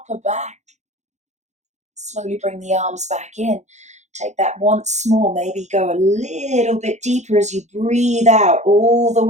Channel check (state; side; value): late; left; 0.33 ms